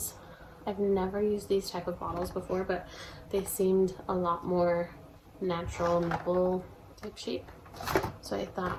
I've never used these type of bottles before, but they seemed a lot more natural nipple type shape. So I thought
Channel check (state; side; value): identical; both; correlation 1.00